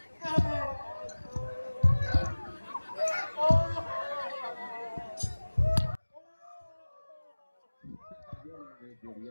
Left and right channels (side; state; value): both; inverted; correlation -1.00